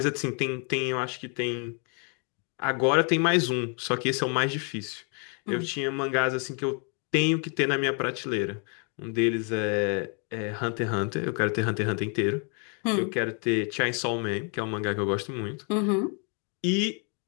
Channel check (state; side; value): quieter; right; 38.6 dB